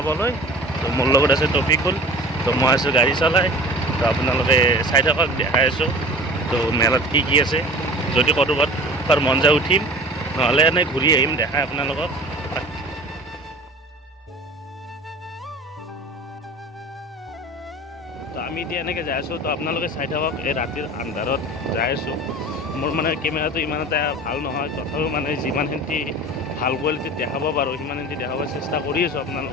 তো মোৰ লগত আছে টপিকুল। তো মই আছোঁ গাড়ী চলাই। তো আপোনালোকে চাই থাকক, দেখাই আছোঁ তো মেলাত কি কি আছে। যদি ক'ৰবাত মন যায় উঠিম, নহ'লে এনেই ঘূৰি আহিম, দেখাই আপোনালোকক। তো আমি এতিয়া এনেকৈ যাই আছোঁ। তো আপোনালোকে চাই থাকক, এই ৰাতিৰ আন্ধাৰত যাই আছোঁ। মোৰ মানে কেমেৰাটো ইমান এটা ভাল নহয়, তথাপিও মানে যিমানখিনি ভাল কোৱালিটিত দেখাব পাৰোঁ সিমানখিনি দেখাব চেষ্টা কৰি আছোঁ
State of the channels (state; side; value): normal; both; correlation 0.40